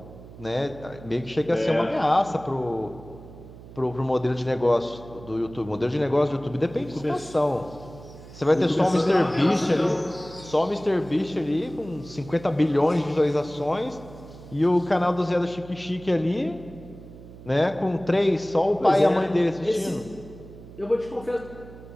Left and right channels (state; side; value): noise; right; hum, 17 dB below the sound